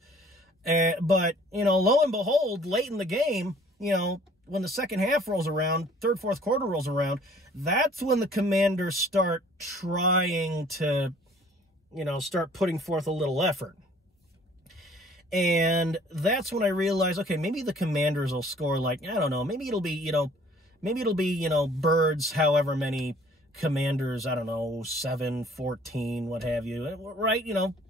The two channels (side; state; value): both; normal; correlation 0.55